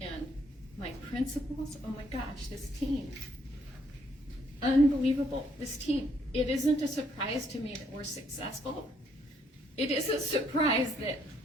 and my principals. Oh my gosh, this team. Unbelievable, this team. It isn't a surprise to me that we're successful. It is a surprise that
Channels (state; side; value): normal; both; correlation 0.70